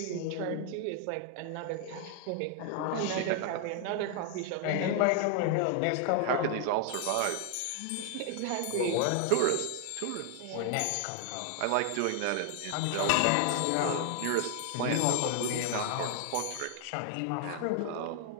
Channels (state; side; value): different; both; correlation 0.00